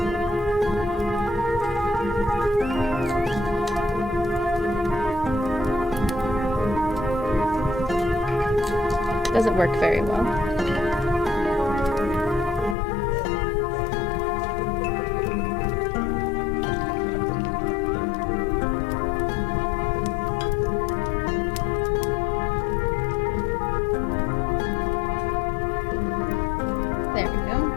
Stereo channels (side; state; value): right; drops out; at 12.8 s